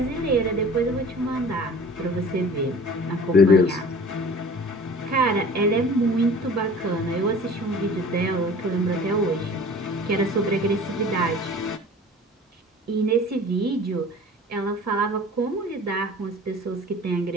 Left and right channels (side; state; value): both; normal; correlation 0.44